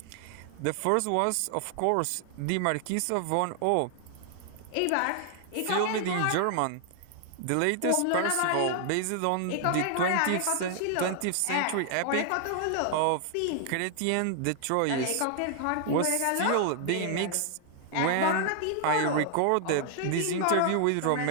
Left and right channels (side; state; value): both; different; correlation 0.00